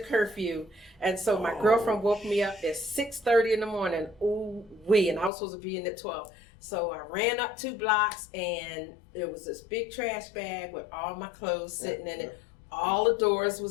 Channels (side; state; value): right; drops out; at 5.3 s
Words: and so my girlfriend woke me up at 6:30 in the morning. Ooh wee, and I was supposed to be in at 12. So I ran up 2 blocks, and there was this big trash bag with all my clothes sitting in it. All the doors